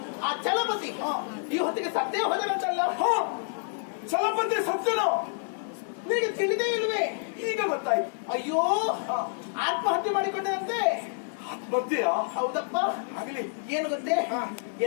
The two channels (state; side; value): silent; right; 59 dB below the other